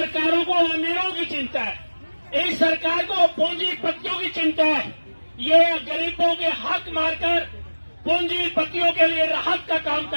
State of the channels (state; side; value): inverted; both; correlation -1.00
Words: को अमीरों की चिंता है, इस सरकार को पूंजीपतियों की चिंता है। ये गरीबों के हक मारकर पूंजीपतियों के लिए राहत का काम